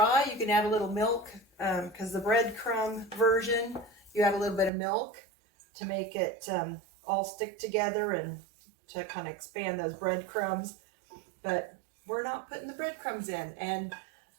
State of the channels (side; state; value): left; drops out; at 4.7 s